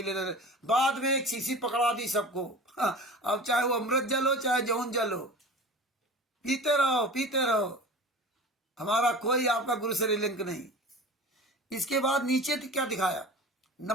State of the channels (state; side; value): normal; both; correlation 0.37